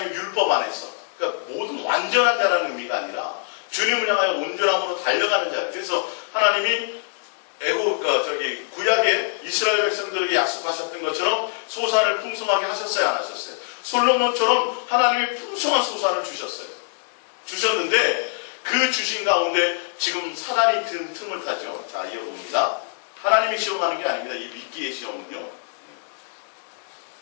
율법 안에서, 그러니까 모든 완전한 자라는 의미가 아니라 주님을 향하여 온전함으로 달려가는 자. 그래서 하나님이 구약의 이스라엘 백성들에게 약속하셨던 것처럼 소산을 풍성하게 하셨어요, 안 하셨어요? 솔로몬처럼 하나님이 풍성한 소산을 주셨는데 그 주신 가운데 지금 사단이 든 틈을 타죠. 자, 이어봅니다. 하나님이 시험하는 게 아닙니다. 이 믿기의 시험은요.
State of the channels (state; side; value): silent; right; 63 dB below the other